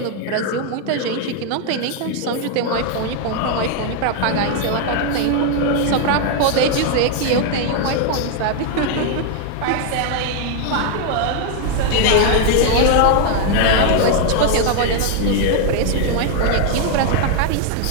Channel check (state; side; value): different; both; correlation 0.00